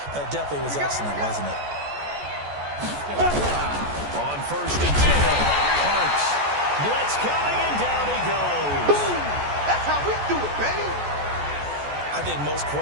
That definitely was excellent, wasn't it? On 1st and 10, Parks. Blitz coming, and down he goes. That's how we do it, baby. I think most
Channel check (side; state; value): left; late; 14 ms